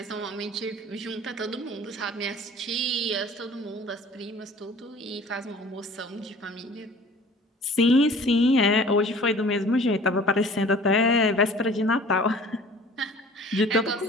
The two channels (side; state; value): both; normal; correlation 0.48